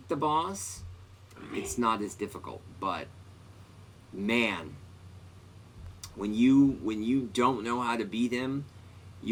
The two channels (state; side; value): identical; both; correlation 1.00